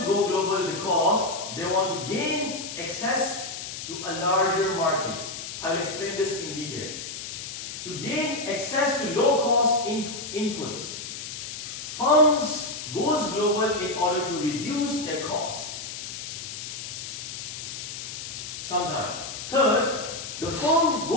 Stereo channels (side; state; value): left; noise; hiss, 8 dB below the sound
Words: go global because they want to gain access to a larger market. I will explain this in detail. To gain access to low-cost inputs. Firms goes global in order to reduce their cost. Sometimes. Third, the firm